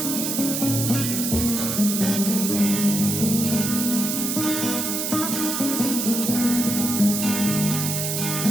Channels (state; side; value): noise; right; hiss, 1 dB below the sound